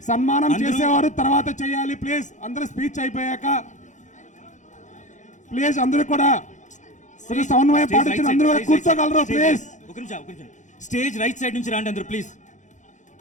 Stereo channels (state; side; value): late; right; 0.35 ms